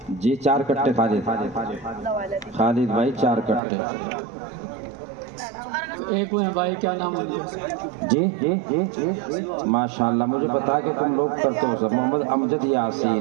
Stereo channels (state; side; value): drops out; left; at 3.6 s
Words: جی. 4 کٹے خالد بھائی 4 کٹے. ایک وہ بھائی کیا نام ہے جی ماشاءاللہ. مجھے بتا کہ تم لوگ کرتے ہو سب. محمد امجد